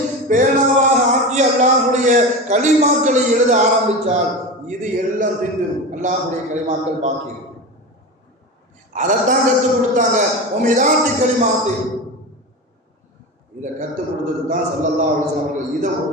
பேனாவாக ஆக்கி அல்லாஹ்வுடைய கலிமாக்களை எழுத ஆரம்பித்தால் இது எல்லாம் தின்றும். அல்லாஹ்வுடைய கலிமாக்கள் பாக்கி இருக்கு. அதைத்தான் கற்றுக் கொடுத்தாங்க. உமிதாத்தி கலிமாத்தி, இதை கற்றுக் கொடுத்தது தான் ஸல்லல்லாஹு அலைஹி வஸல்லம் அவர்கள். இதை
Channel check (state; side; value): normal; both; correlation 0.25